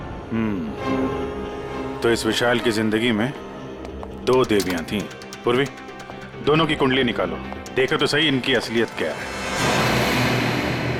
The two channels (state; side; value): identical; both; correlation 1.00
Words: तो इस विशाल की जिंदगी में 2 देवियां थीं। पूर्वी, दोनों की कुंडली निकालो, देखो तो सही इनकी असलियत क्या है।